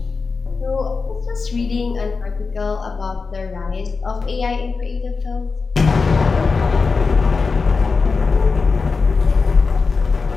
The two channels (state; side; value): quieter; right; 4.5 dB